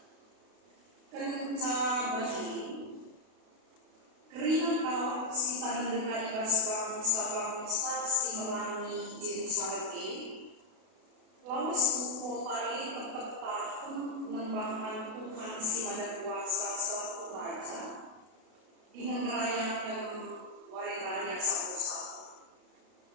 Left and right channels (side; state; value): left; late; 32 ms